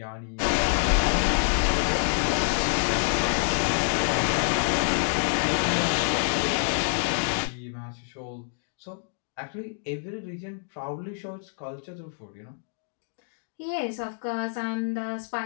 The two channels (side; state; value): right; silent; digital silence